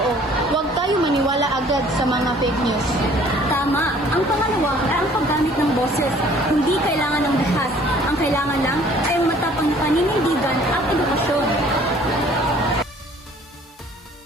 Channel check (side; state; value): both; normal; correlation 0.55